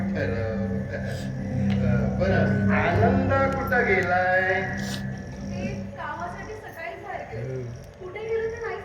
ठरव. बरं आनंद कुठं गेलाय? ते कामासाठी सकाळी बाहेर गेले. कुठे गेले ते नाही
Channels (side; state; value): both; identical; correlation 1.00